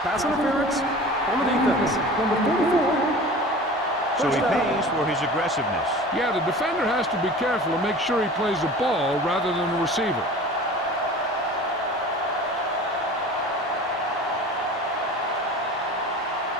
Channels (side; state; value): both; normal; correlation 0.39